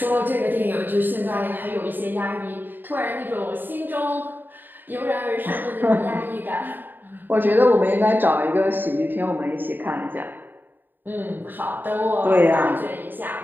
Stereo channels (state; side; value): late; left; 0.092 ms